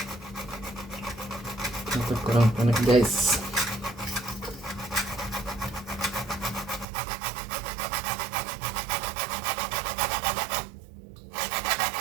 Untuk kurang pendek, guys.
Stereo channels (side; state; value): left; drops out; at 6.9 s